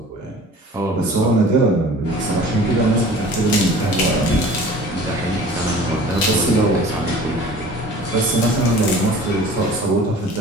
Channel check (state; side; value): normal; both; correlation 0.44